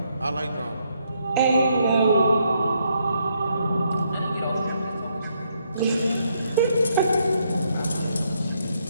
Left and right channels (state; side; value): inverted; both; correlation -0.75